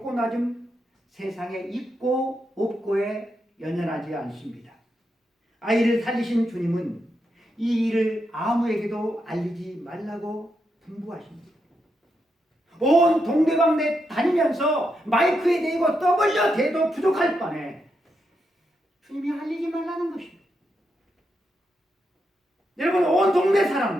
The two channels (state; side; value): normal; both; correlation 0.83